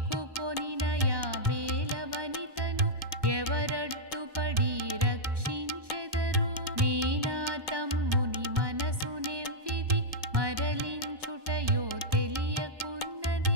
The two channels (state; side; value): late; left; 1.2 ms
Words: యాబేల వనితను ఎవరడ్డుపడి రక్షించెదరు? నేనా తమ్ముని మనసు నెవ్విది మరలించుటయో